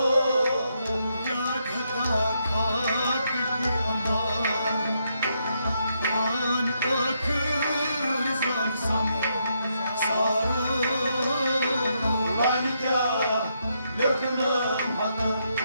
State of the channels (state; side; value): inverted; both; correlation -0.78